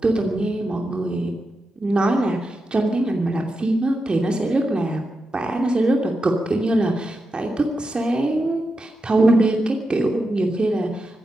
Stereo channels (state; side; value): normal; both; correlation 0.88